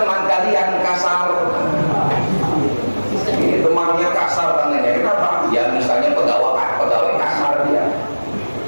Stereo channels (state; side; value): inverted; both; correlation -1.00